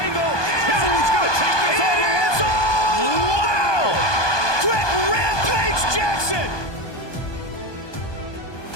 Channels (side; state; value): right; late; 1.2 ms